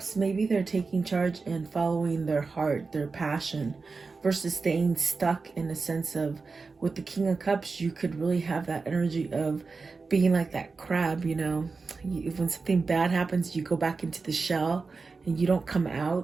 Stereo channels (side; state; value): left; quieter; 4.3 dB